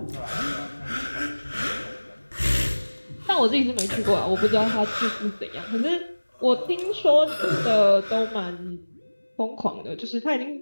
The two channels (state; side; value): inverted; both; correlation -1.00